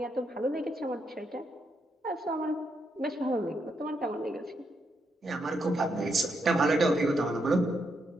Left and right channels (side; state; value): both; normal; correlation 0.80